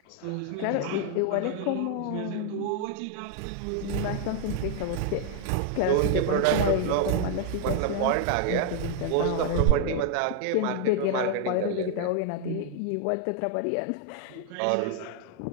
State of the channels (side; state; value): both; different; correlation 0.00